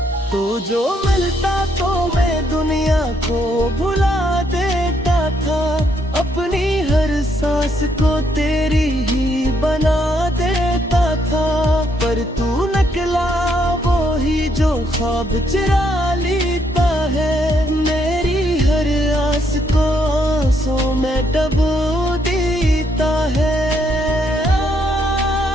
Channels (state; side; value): normal; both; correlation 0.73